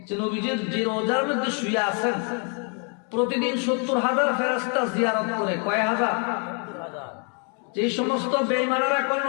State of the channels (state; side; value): quieter; right; 38.8 dB